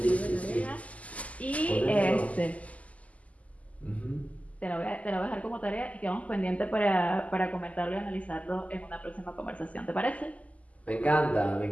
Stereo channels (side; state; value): right; late; 0.070 ms